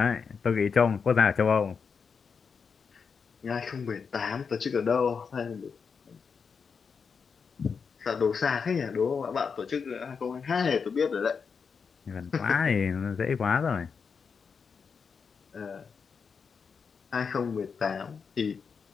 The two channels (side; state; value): right; quieter; 5.8 dB